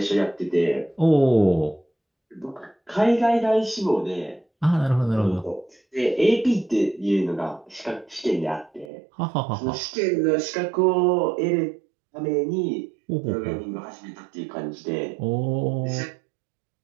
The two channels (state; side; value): drops out; left; at 8.8 s